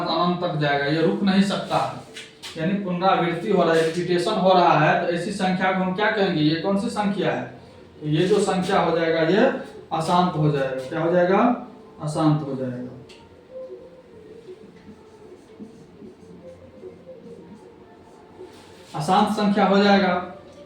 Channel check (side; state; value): both; identical; correlation 1.00